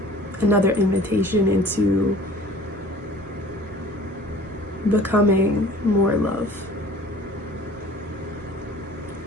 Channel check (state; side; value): normal; both; correlation 0.47